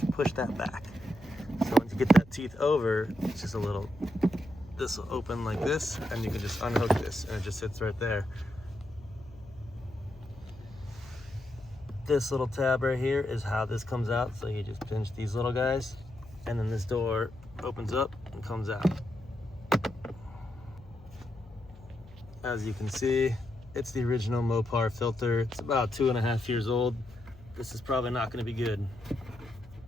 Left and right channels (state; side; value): noise; left; hum, 21 dB below the sound